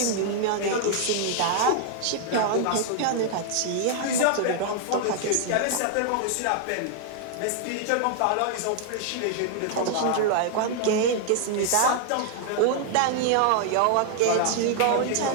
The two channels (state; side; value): different; both; correlation 0.00